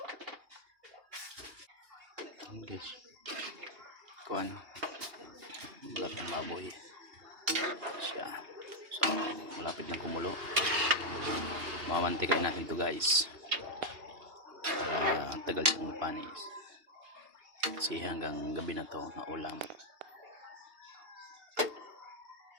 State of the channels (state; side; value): late; left; 2.8 ms